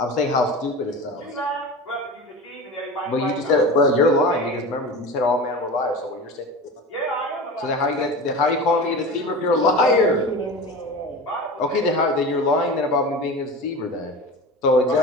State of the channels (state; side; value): normal; both; correlation 0.31